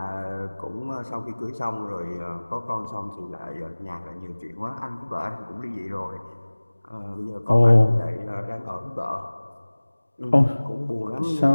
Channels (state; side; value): inverted; both; correlation -1.00